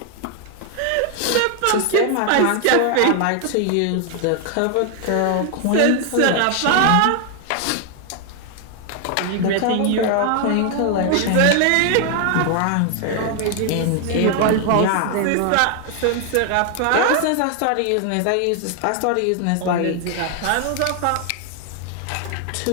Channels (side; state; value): both; different; correlation 0.00